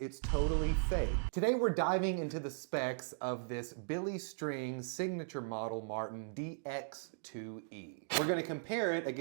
totally fake. Today we're diving into the specs of this Billy Strings signature model Martin DX2E. We're gonna compare it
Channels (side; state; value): left; silent; digital silence